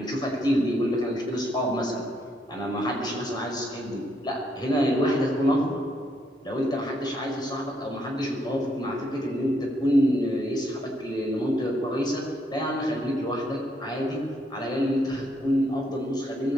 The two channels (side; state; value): both; normal; correlation 0.74